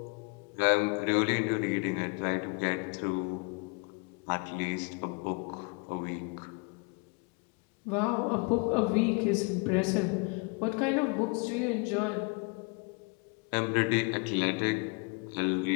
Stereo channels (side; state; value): right; quieter; 32.5 dB